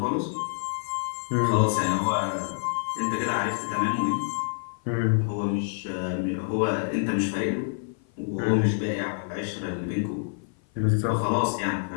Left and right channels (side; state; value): right; silent; 55 dB below the other